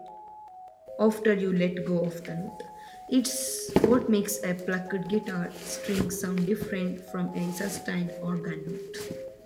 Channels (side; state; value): both; identical; correlation 1.00